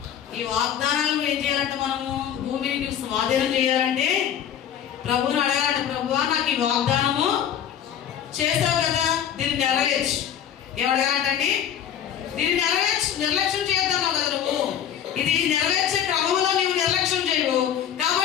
ఈ వాగ్దానాలు ఏం చేయాలంటే మనము భూమిని స్వాధీనం చేయాలంటే ప్రభువుని అడగాలంటే, ప్రభువా నాకు ఈ వాగ్దానము చేశావు కదా, దీన్ని నెరవేర్చు. ఏమడగాలంటండి? దీన్ని నెరవేర్చు. నిర్లక్ష్యం చేద్దాము కదా నువ్వు. ఇది నెరవేర్చే క్రమంలో నీవు నిర్లక్ష్యం చేయవు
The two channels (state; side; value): quieter; right; 9.5 dB